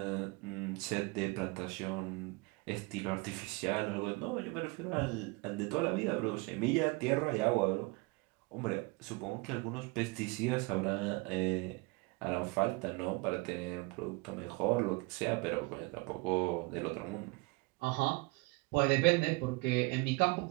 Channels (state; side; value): quieter; left; 25.9 dB